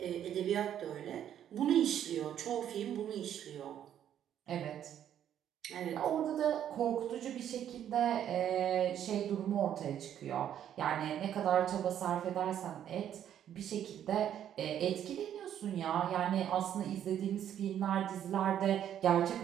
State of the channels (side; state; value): left; quieter; 10.2 dB